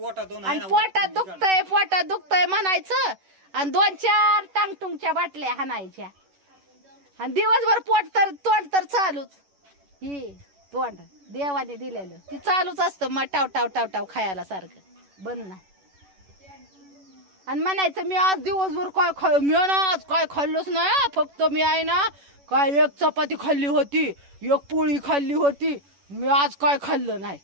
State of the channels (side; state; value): left; late; 11 ms